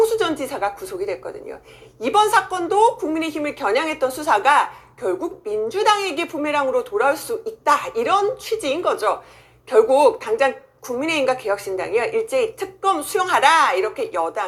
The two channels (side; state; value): both; identical; correlation 1.00